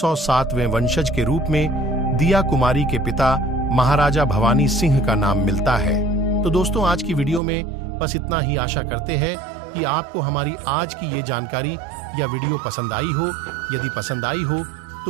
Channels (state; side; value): drops out; left; at 7.4 s